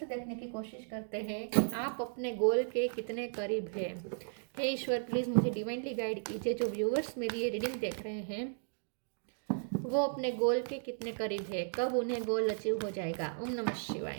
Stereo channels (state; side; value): silent; left; digital silence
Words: देखने की कोशिश करते हैं कि आप अपने गोल के कितने करीब हैं। हे ईश्वर, प्लीज़ मुझे डिवाइनली गाइड कीजिए। जो व्यूवर्स मेरी ये रीडिंग देख रहे हैं वो अपने गोल के कितने करीब है, कब उन्हें गोल अचीव हो जाएगा। ओम नमः